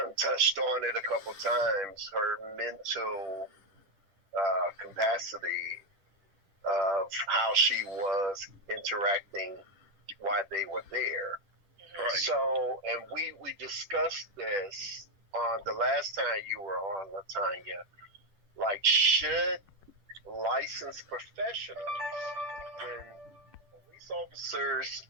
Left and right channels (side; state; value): left; late; 10 ms